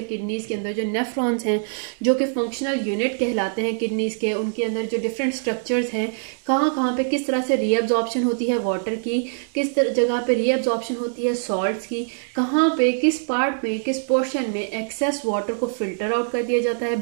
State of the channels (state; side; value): silent; left; digital silence